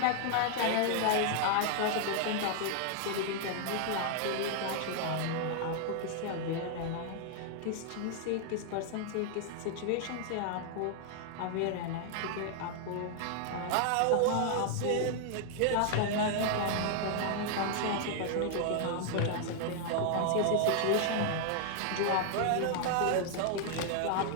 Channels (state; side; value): different; both; correlation 0.00